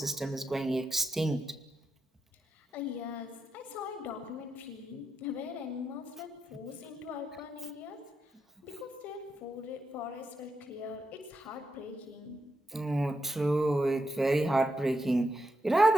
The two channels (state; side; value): normal; both; correlation 0.84